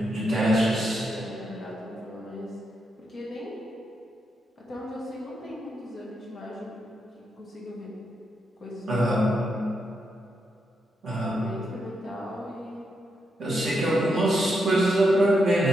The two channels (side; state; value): both; normal; correlation 0.82